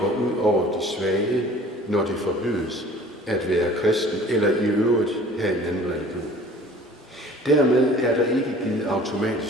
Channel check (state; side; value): normal; both; correlation 0.48